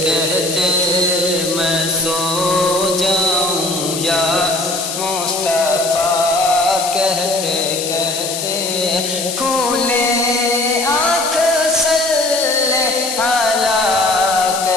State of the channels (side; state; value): left; noise; hiss, 5 dB below the sound